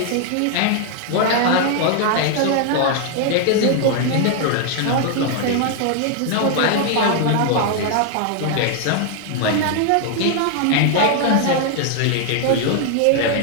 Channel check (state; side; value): different; both; correlation 0.00